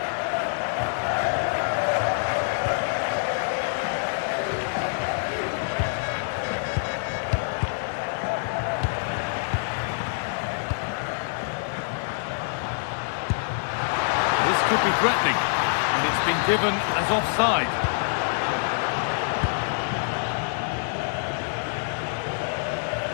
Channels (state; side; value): silent; right; 61 dB below the other